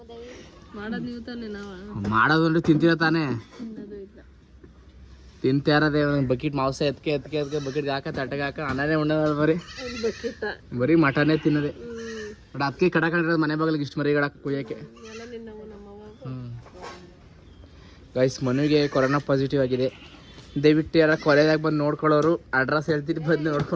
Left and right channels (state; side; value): identical; both; correlation 1.00